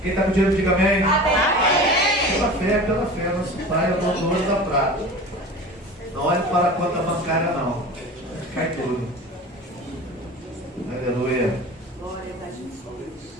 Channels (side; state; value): both; normal; correlation 0.36